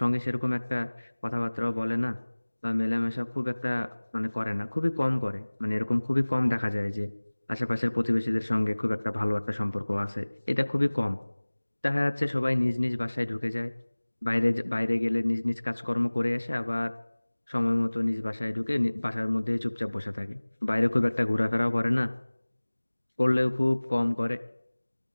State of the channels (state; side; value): inverted; both; correlation -1.00